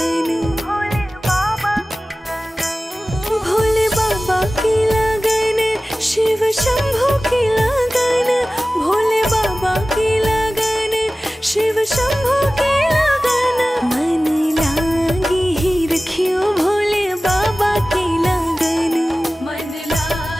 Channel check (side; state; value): both; normal; correlation 0.97